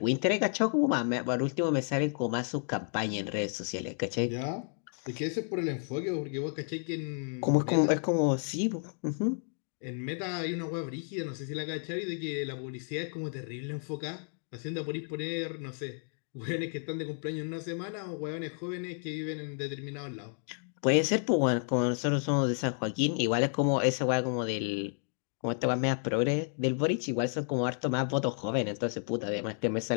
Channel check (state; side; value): silent; right; 57 dB below the other